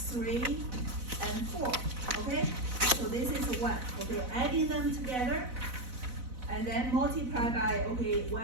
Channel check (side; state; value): left; late; 4.0 ms